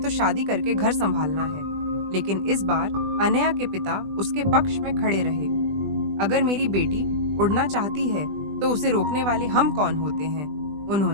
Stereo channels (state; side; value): late; left; 20 ms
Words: तो शादी करके घर संभालना है। लेकिन इस बार अनया के पिता उसके पक्ष में खड़े रहे। अगर मेरी बेटी उड़ना चाहती है तो उसे रोकने वाले हम कौन होते हैं,